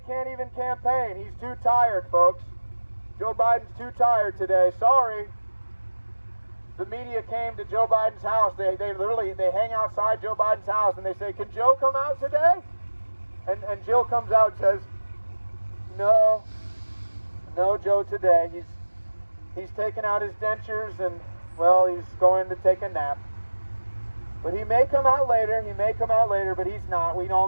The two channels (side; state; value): both; inverted; correlation -1.00